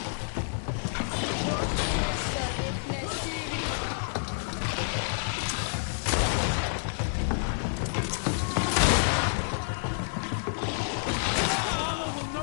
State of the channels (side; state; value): right; silent; digital silence